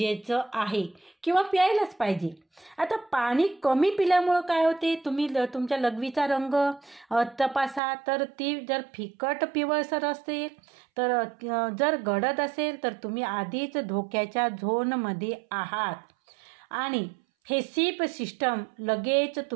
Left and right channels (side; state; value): left; drops out; at 7.8 s